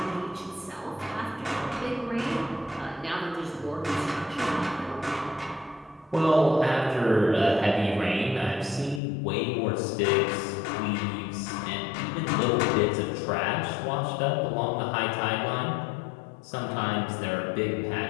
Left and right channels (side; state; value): right; drops out; at 9.0 s